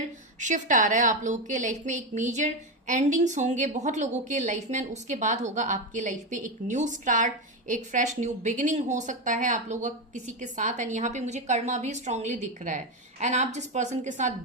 शिफ्ट आ रहा है आप लोगों के लाइफ में, एक मेजर एंडिंग्स होंगे बहुत लोगों के लाइफ में। उसके बाद होगा आपके लाइफ में एक न्यू स्टार्ट, एक फ्रेश न्यू बिगिनिंग हो सकता है आप लोगों का किसी के साथ। एंड यहाँ पे मुझे कर्मा भी स्ट्रांगली दिख रहा है। एंड आप जिस पर्सन के साथ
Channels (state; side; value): normal; both; correlation 0.12